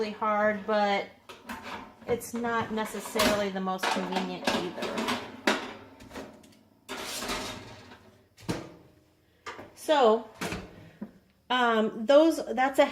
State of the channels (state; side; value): identical; both; correlation 1.00